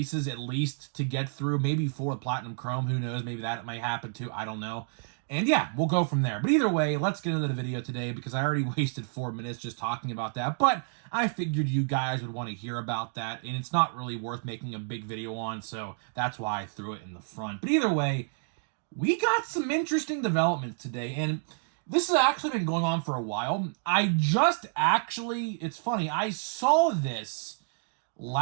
at least to get through, maybe 4 Platinum Chrome. Who knows? Maybe that might happen too. I don't know. And yeah, we'll go from there. But either way, let's get into the video today, because I already wasted 4 minutes just talking about that. But I figured you guys would want to hear about that, and it's not really worth making a big video on, so that's why I threw it in the front. But either way, we got some interesting developments today, and this has actually been going on for a while. It's funny, I saw this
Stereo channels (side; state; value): left; silent; digital silence